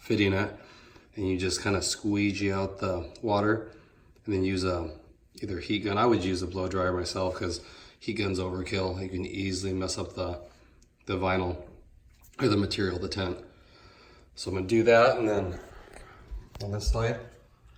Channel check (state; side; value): identical; both; correlation 1.00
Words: it. And you just kind of squeegee out the water and then use either heat gun. I would use a blow dryer myself because heat gun's overkill. You can easily mess up the vinyl or the material, the tent. So I'm gonna do that, and then on this side,